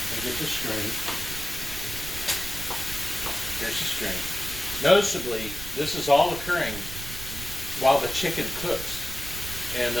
and get the string. Here's the string. Noticeably, this is all occurring while the chicken cooks. And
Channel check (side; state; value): right; noise; rumble, 10 dB below the sound